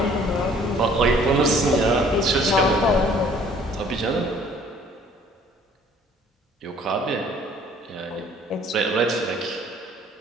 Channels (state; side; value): normal; both; correlation 0.56